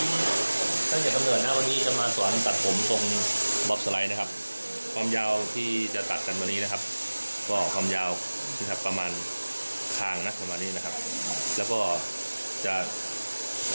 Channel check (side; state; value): both; inverted; correlation -1.00